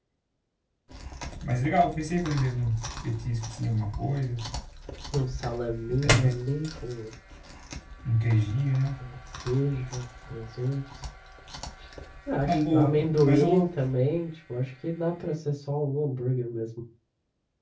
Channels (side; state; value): both; identical; correlation 1.00